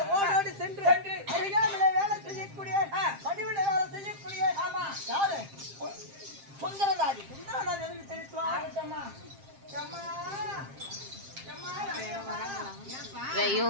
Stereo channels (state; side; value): late; left; 7.5 ms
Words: ஓடோடி சென்று அருகாமையிலே வேலை செய்யக்கூடிய பணிவிட வேலை செய்யக்கூடிய ஆமா. யாரு சுந்தரதாரி. சுந்தரநாத் எனக்கு தெரிவித்துவா. ஆகட்டம்மா. அம்மா, அம்மா, அம்மா. ஏன்பா?